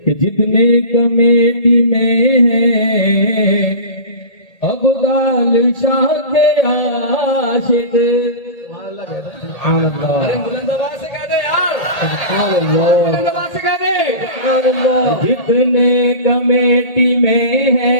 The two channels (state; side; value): late; right; 1.8 ms